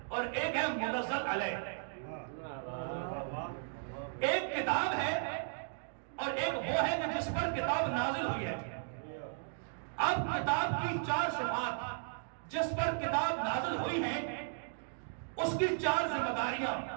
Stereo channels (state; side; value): silent; left; digital silence